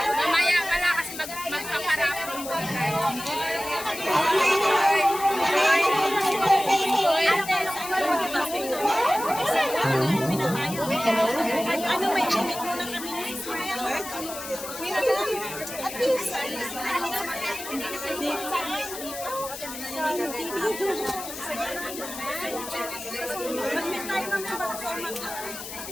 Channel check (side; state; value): left; noise; hiss, 10 dB below the sound